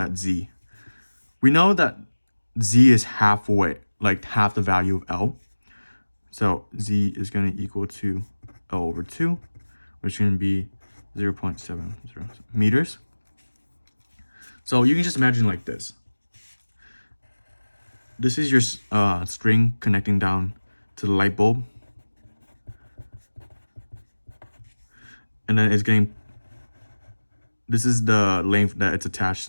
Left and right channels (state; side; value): inverted; both; correlation -1.00